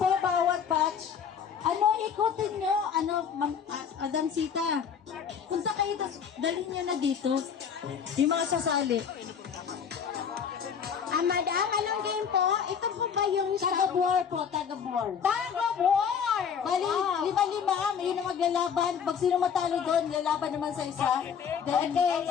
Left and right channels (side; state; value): right; quieter; 7.3 dB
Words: bawat batch. Ano, ikutin nyo, Madam Sita. Punta kayo, dalhin nyo na dito. Yung mga sasali. Madam, anong game po? Ito po ba yung taga-war po, taga-war? Taga-war! Bali, lima-lima, yun ang maglalaban. Pag sino matalo doon, lalaban naman sa isa. Okay,